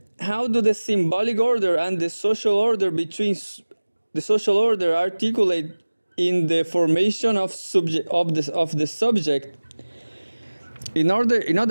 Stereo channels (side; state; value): both; inverted; correlation -1.00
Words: the symbolic order and the social order articulate in the formation of the subject? In